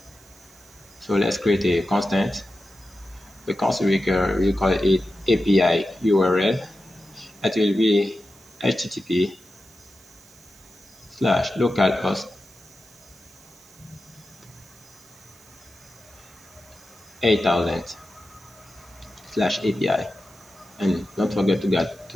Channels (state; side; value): noise; right; hiss, 26 dB below the sound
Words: So let's create a constant. The constant we call it API URL. It will be http:/localhost 8000/API, and don't forget